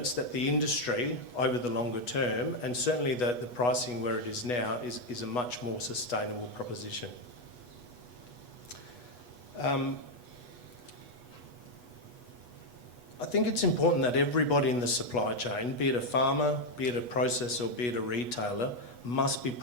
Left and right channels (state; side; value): late; right; 8.2 ms